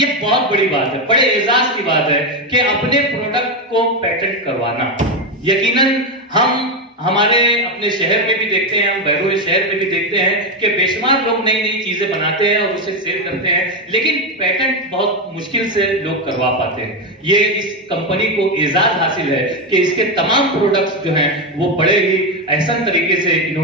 बहुत बड़ी बात है, बड़े एजाज की बात है कि अपने प्रोडक्ट को पेटेंट करवाना। यकीनन हम हमारे अपने शहर में भी देखते हैं, हम बैरूनी शहर में भी देखते हैं कि बेशुमार लोग नई नई चीजें बनाते हैं और उसे सेल करते हैं, लेकिन पेटेंट बहुत मुश्किल से लोग करवा पाते हैं। ये इस कंपनी को एजाज हासिल है कि इसके तमाम प्रोडक्ट्स जो हैं वो बड़े ही एहसन तरीके से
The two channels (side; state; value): both; normal; correlation 0.10